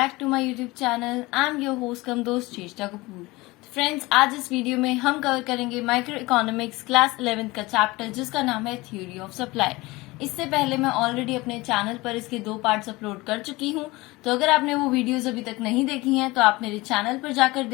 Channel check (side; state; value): right; quieter; 21.6 dB